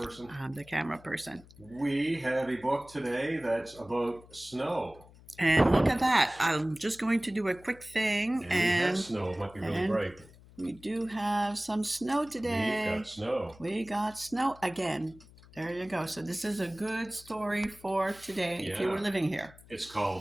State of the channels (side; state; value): left; noise; hum, 23 dB below the sound